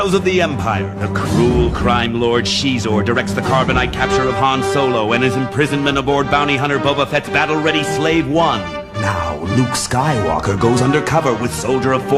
of the Empire. The cruel crime lord Shizor directs the carbonite capture of Han Solo and his imprisonment aboard bounty hunter Boba Fett's battle-ready Slave One. Now, Luke Skywalker goes undercover with Soldier of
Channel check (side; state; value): both; identical; correlation 1.00